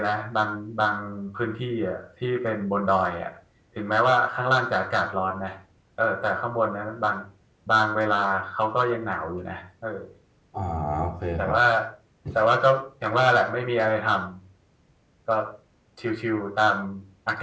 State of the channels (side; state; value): both; identical; correlation 1.00